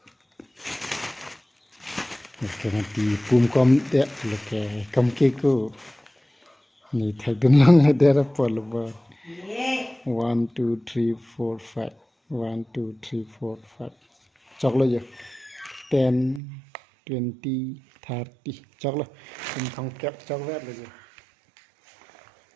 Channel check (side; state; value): left; drops out; at 16.4 s